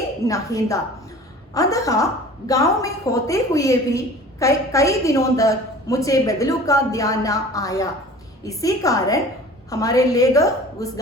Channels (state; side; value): normal; both; correlation 0.43